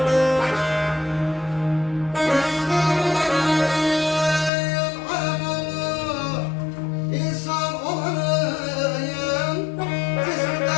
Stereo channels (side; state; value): right; drops out; at 4.5 s